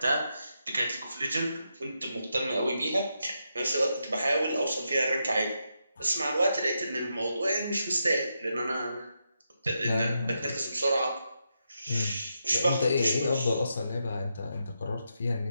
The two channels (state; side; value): inverted; both; correlation -0.84